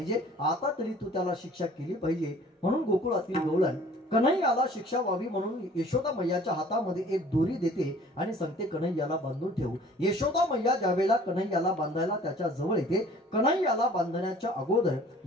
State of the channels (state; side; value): normal; both; correlation 0.51